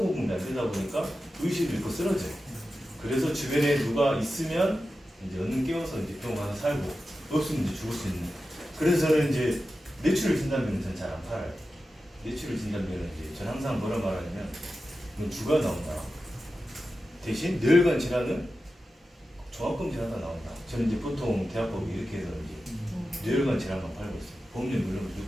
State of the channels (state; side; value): normal; both; correlation 0.92